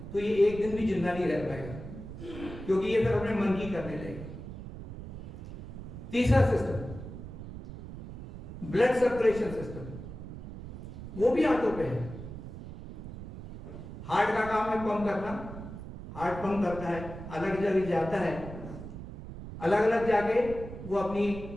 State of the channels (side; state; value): right; noise; rumble, 11 dB below the sound